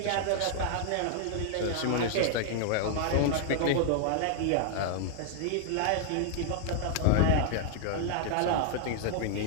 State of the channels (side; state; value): both; different; correlation 0.00